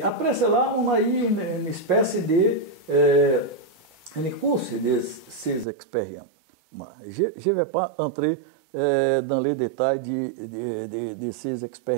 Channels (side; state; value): left; drops out; at 5.7 s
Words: après cela, on a eu une espèce de course de ces expériences. Je ne vais pas entrer dans les détails de ces